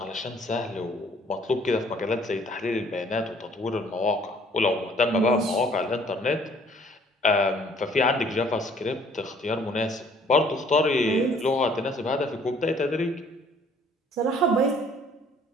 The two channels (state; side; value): normal; both; correlation 0.59